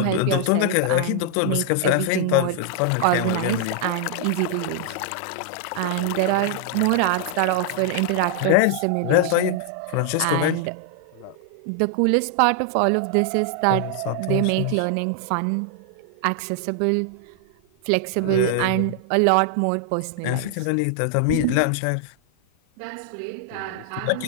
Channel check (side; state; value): both; different; correlation 0.00